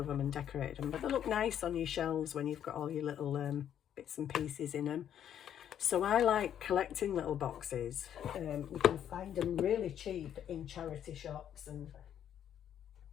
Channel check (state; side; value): quieter; right; 9.8 dB